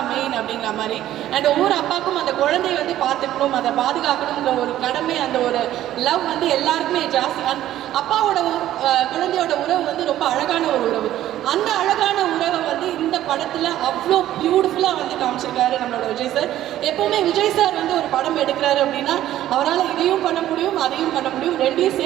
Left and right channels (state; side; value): quieter; left; 13.1 dB